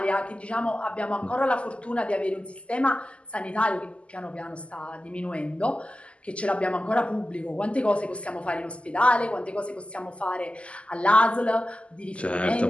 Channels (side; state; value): right; late; 0.057 ms